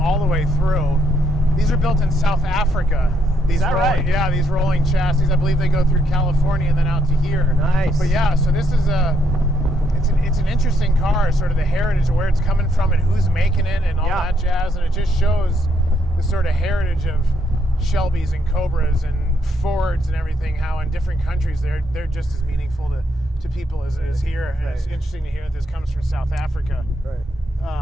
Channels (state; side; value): normal; both; correlation 0.74